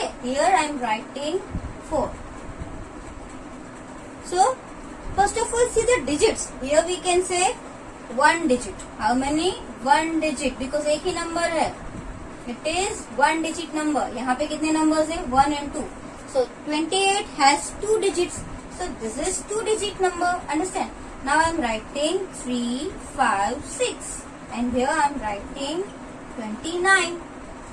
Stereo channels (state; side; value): identical; both; correlation 1.00